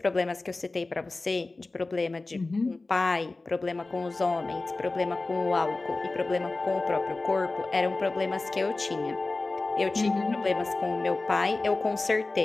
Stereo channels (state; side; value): quieter; right; 3.3 dB